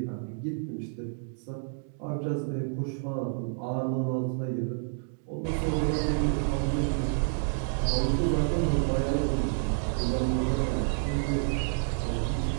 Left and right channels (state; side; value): silent; left; digital silence